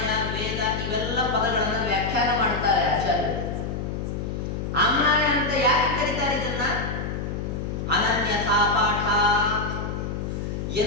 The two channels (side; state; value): left; noise; hum, 4 dB below the sound